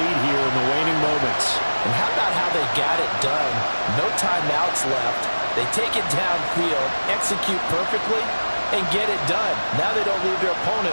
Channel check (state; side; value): inverted; both; correlation -1.00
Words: here in the waning moments. And how about how they got it done? No timeouts left. They take it downfield, execute perfectly, and get it done. Now they don't leave their